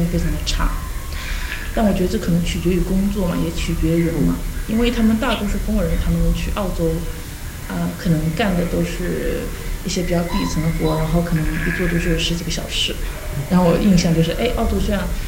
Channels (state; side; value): identical; both; correlation 1.00